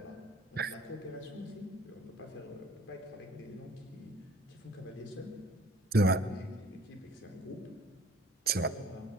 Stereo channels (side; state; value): both; normal; correlation 0.50